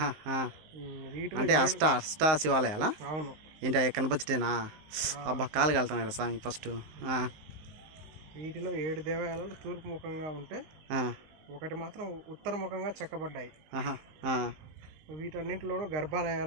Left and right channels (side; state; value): left; late; 19 ms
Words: అంటే అష్ట శివాలయాలా? అవును. ఏంటి కనపచ్చటేనా? అబ్బా కాలు కలుతున్నాయి స్వామి ఫస్ట్. వీటిలో 7 దేవాలయాలు తూర్పు ముఖంగా ఉంటే ఒకటి మాత్రం ఉత్తర ముఖంగా చెక్కబడ్డాయి. వీటన్నింటిలోనూ